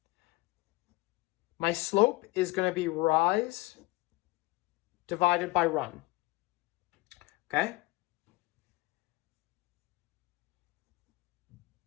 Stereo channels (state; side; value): quieter; right; 21.3 dB